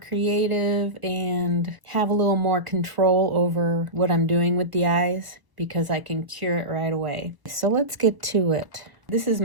and have a little more control over what I'm doing with the eyes because I can cure it right away. So let's get to it. This is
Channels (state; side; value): late; left; 1.0 ms